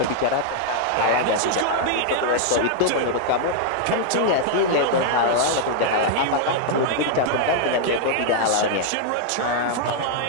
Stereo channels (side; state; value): both; different; correlation -0.01